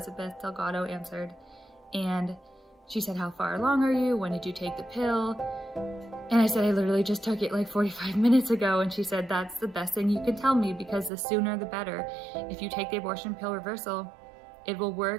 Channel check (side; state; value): left; drops out; at 11.1 s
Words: Delgado answered. And she said, how far along are you? When did you take the pill? And I said, I literally just took it like 45 minutes ago. And she said, that's the best thing you can tell me, because the sooner the better. If you take the abortion pill reversal, it will